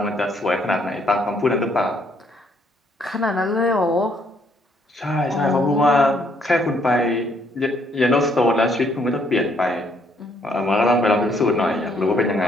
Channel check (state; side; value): normal; both; correlation 0.68